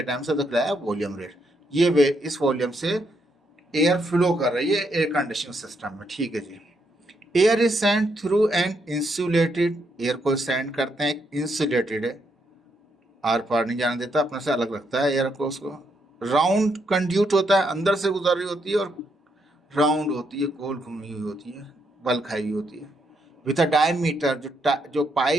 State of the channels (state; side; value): normal; both; correlation 0.77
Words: टाइम से तो क्या वॉल्यूम रेट। ये इस वॉल्यूम से एयर फ्लो कर रही है एयर कंडीशनिंग सिस्टम में, ठीक है जी। Air is send through an insulated, air को सेंड करते हैं इंसुलेटेड है, आर पार नहीं जाने देता, अपने से अलग रखता है एयर को, उसको। राउंड कंड्यूट होता है, अंदर से गुजर रही होती है, और राउंड होती है, गोल घूमी हुई होती है, बल खाई हुई होती है। विथ अ डायमीटर, जो